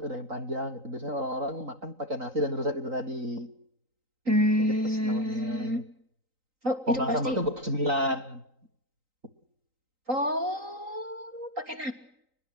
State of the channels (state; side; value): late; left; 3.9 ms